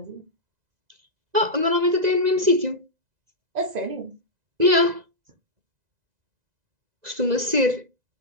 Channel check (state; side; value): late; left; 2.0 ms